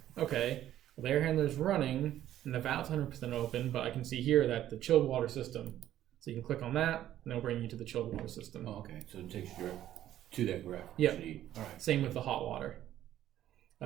Okay, well, the air handler is running and the valve's 100% open, but I can see here that the chilled water system. So you can click on that and it'll bring you to the chilled water system. Oh, okay. So it takes you to that graph. Yeah. All right. Same with the hot water.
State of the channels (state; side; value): quieter; left; 12.4 dB